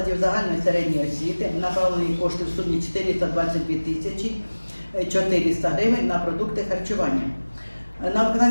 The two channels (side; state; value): both; inverted; correlation -1.00